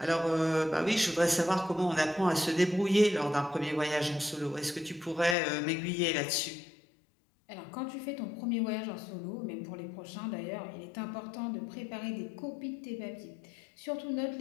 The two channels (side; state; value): right; drops out; at 5.4 s